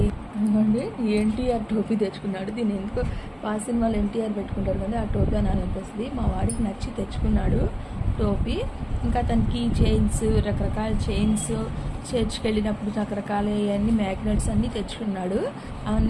ఇవ్వండి, ఎన్టీఆర్ టోపీ తెచ్చుకున్నాడు. దీన్ని ఎందుకో పాత సినిమాలో ఎన్టీఆర్ పెట్టుకుంటారు కదా, ఆ టోపీ అని అనిపిస్తుంది. మా వాడికి నచ్చి తెచ్చుకున్నాడు టోపీ. ఇంకా తన కీ చైన్స్, రకరకాల చైన్స్, చర్చ్కి వెళ్ళినప్పుడు రకరకాల అన్ని మ్యాగ్నెట్స్ అన్నీ తెచ్చుకున్నాడు.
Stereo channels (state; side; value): identical; both; correlation 1.00